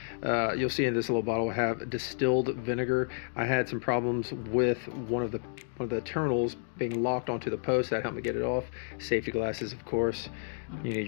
You'll see in this little bottle I have distilled vinegar. I had some problems with one of the terminals being locked onto the post. That helped me get it off. Safety glasses, of course. You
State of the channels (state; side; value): silent; right; digital silence